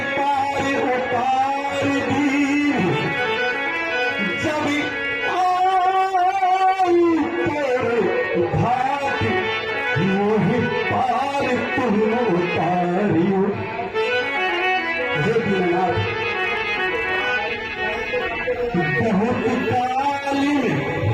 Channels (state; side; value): identical; both; correlation 1.00